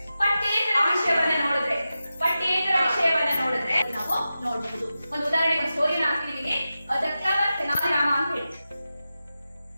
ಪಠ್ಯೇತರ ವಿಷಯವನ್ನ ನೋಡಿದ್ರೆ ನಾವು ನೋಡಬಹುದು. ಒಂದು ಉದಾಹರಣೆಗೆ ಒಂದು ಸ್ಟೋರಿನ ಹಾಕ್ತಿದೀನಿ, ತೆನಾಲಿ ರಾಮ ಅಂತ ಹೇಳಿ.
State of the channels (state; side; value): inverted; both; correlation -0.92